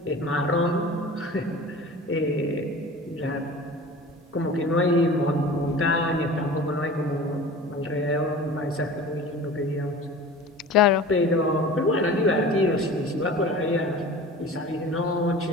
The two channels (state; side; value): normal; both; correlation 0.39